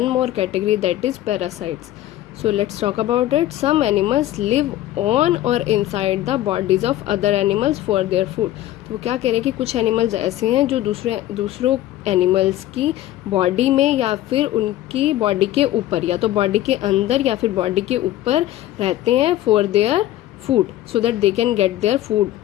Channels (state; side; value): quieter; right; 14.1 dB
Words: more category, that is parasites. So let's talk about it. Some animals live on or inside the bodies of other animals for their food. तो वो क्या कह रहे हैं कि कुछ animals ऐसे हैं जो दूसरों एनिमल्स की बॉडी में या फिर उनकी बॉडी के ऊपर, या तो बॉडी के अंदर या फिर बॉडी के ऊपर रहते हैं for their food, so that they can get their food.